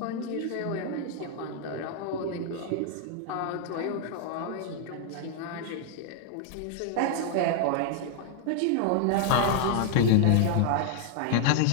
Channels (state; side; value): different; both; correlation 0.00